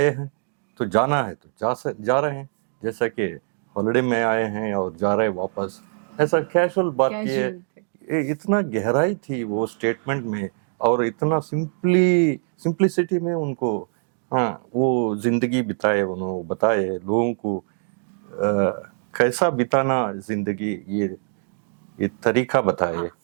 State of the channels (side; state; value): left; silent; digital silence